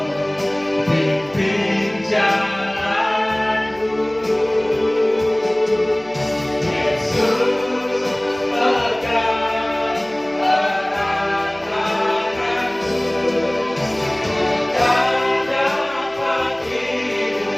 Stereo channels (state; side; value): noise; right; hum, 24 dB below the sound